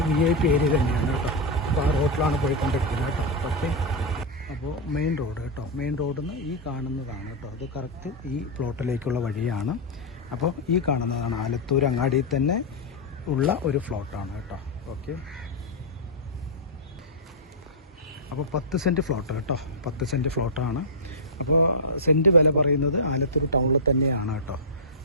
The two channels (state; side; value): normal; both; correlation -0.06